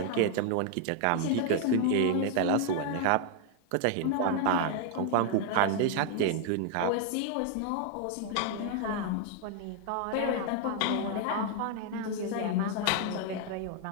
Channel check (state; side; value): different; both; correlation 0.00